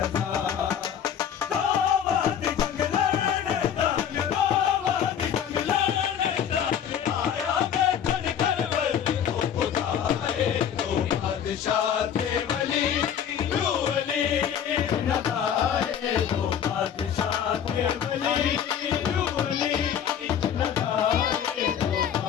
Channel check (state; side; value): quieter; right; 8.8 dB